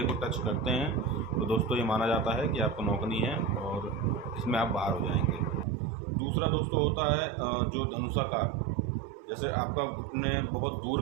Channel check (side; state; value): left; drops out; at 5.7 s